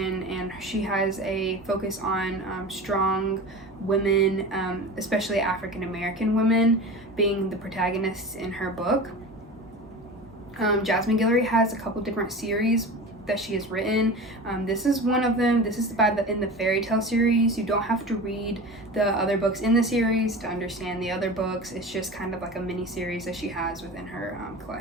and she has a focus on strong women, especially African American women, being the protagonists in her book. Jasmine Guillory has a couple different series that she has written. This is one of them. This is in the fairy tale series. You don't have to read the other books in the series to understand the other books. It's just kind of like a mini series that she has within her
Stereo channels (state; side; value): normal; both; correlation 0.31